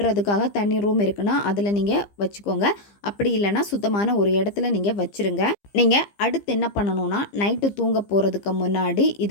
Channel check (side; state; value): right; late; 15 ms